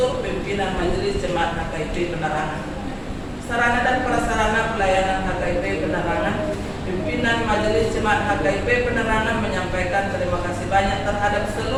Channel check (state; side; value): identical; both; correlation 1.00